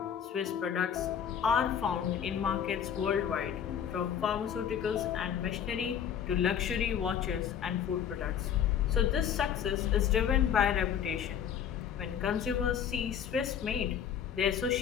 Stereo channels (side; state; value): right; quieter; 8.7 dB